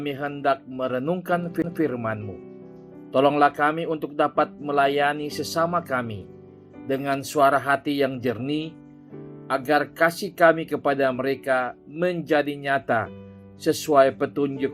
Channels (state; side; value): identical; both; correlation 1.00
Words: hendak merenungkan firman-Mu. Tolonglah kami untuk dapat melayani sesama kami dengan suara hati yang jernih, agar kasih kami kepada mereka menjadi nyata sesuai